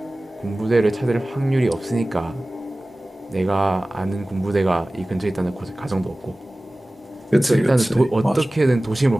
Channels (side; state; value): both; normal; correlation 0.98